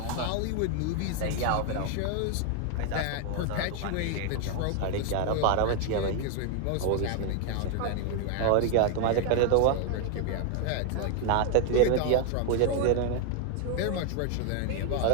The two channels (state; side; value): different; both; correlation 0.00